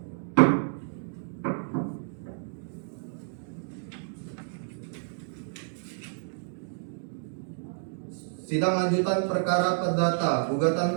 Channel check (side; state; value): left; silent; digital silence